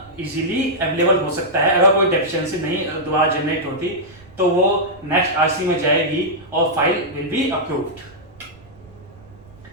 इजीली अवेलेबल हो सकता है। अगर कोई डेफिशिएंसी नहीं दोबारा जनरेट होती तो वो नेक्स्ट RC में जाएगी और फाइल विल बी अप्रूव्ड।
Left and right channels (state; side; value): noise; right; rumble, 25 dB below the sound